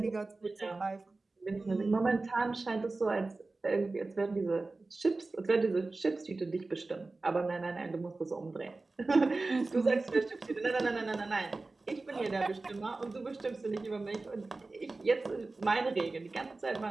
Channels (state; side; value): quieter; left; 3.4 dB